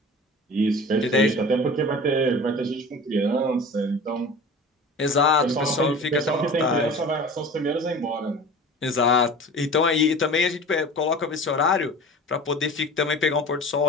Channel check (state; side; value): normal; both; correlation 0.38